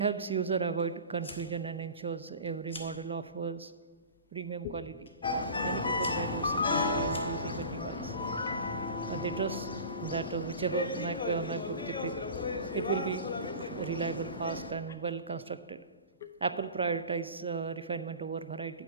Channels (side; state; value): both; inverted; correlation -0.37